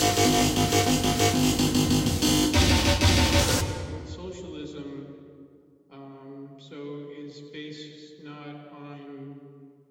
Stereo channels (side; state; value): both; identical; correlation 1.00